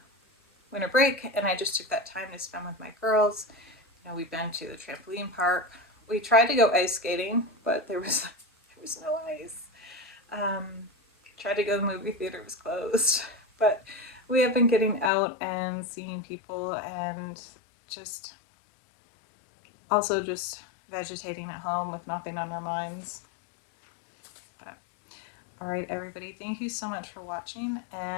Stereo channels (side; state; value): right; drops out; at 15.1 s